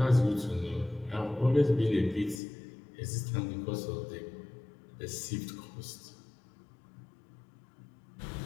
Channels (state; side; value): drops out; right; at 2.4 s